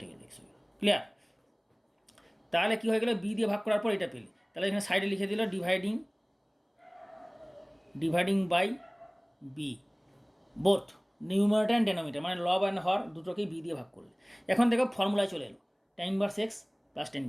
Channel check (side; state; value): both; identical; correlation 1.00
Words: গেলে এক্স হয়ে গেল। ক্লিয়ার। তাহলে কী হয়ে গেলো, বি দিয়ে ভাগ করার পর এটা পেলে, তাহলে এখানে সাইডে লিখে দিল dividing by b, both numerator and denominator, মানে লব অ্যান্ড হর দুটোকেই বি দিয়ে ভাগ করলে। এখন দেখো ফর্মুলায় চলে এলো, tan inverse x plus tan